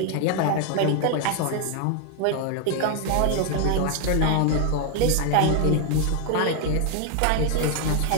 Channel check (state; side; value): different; both; correlation 0.00